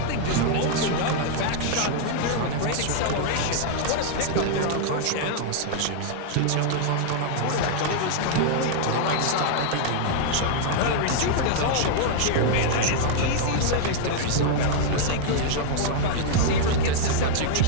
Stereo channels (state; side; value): different; both; correlation -0.01